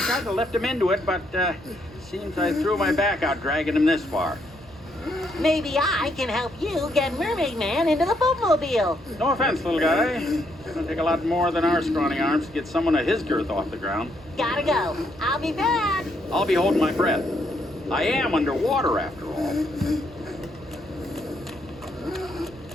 to lift him into it, but seems I threw my back out dragging him this far. Maybe I can help you get Mermaid Man into the boatmobile. No offense, little guy. It's gonna take a lot more than our scrawny arms to get someone of his girth off the ground. Gotta go. I'll be back. I'll be holding my breath. I am underwater after all.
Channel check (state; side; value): normal; both; correlation 0.74